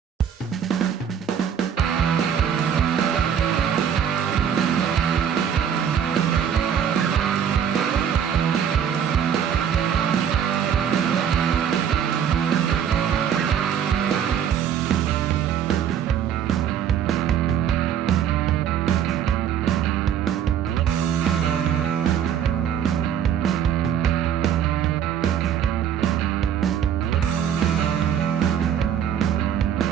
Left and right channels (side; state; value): left; quieter; 8.7 dB